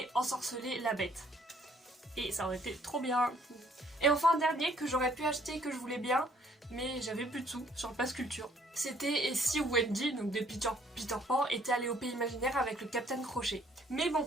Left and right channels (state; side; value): normal; both; correlation 0.62